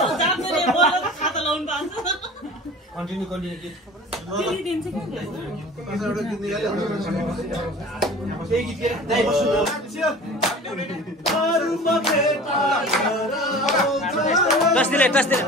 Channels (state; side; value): normal; both; correlation 0.40